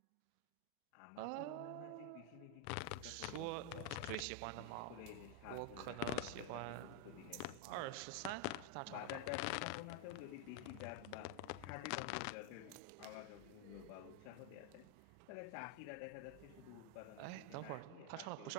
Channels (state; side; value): different; both; correlation 0.01